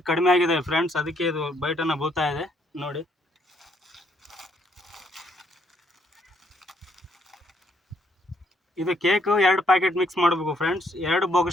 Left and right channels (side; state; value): both; normal; correlation 0.70